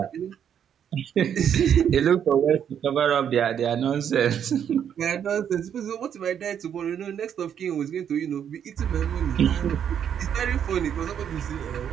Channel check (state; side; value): quieter; left; 8.7 dB